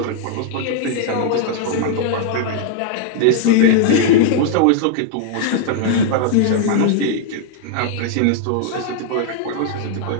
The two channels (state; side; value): different; both; correlation 0.00